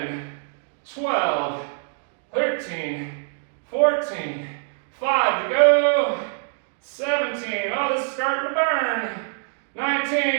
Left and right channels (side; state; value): left; silent; 60 dB below the other